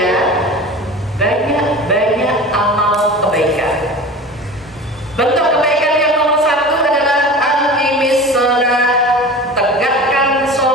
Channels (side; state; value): both; normal; correlation 0.35